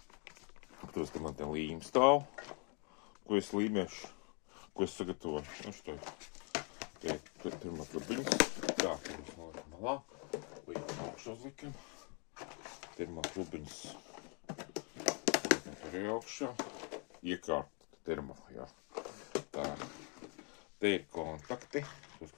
Tos te man te līme stāv, ko es līmēšu, ko es sagatavoju. Šito termo trubiņas, tā, pirms noliekam malā. Līdz augšā uzlikam, termo trubiņas arī augšā, iekārt termo, jā. Tā, te ir kontakti, tos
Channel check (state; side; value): quieter; right; 36.5 dB